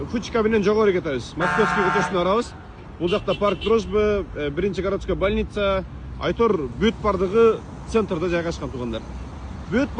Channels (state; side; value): identical; both; correlation 1.00